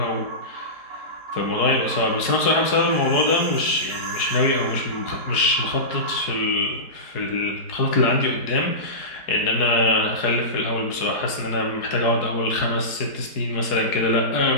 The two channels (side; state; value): right; late; 4.7 ms